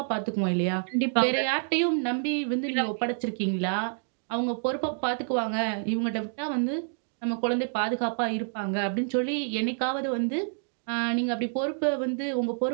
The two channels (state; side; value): silent; left; digital silence